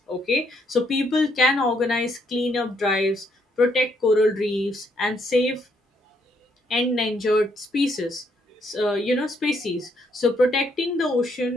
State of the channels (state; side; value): normal; both; correlation 0.72